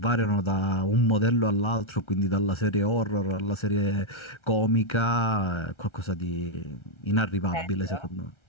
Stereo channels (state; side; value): late; right; 1.3 ms